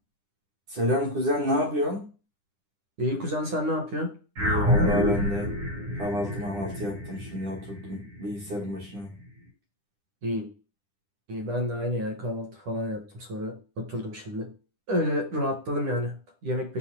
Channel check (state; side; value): late; left; 10 ms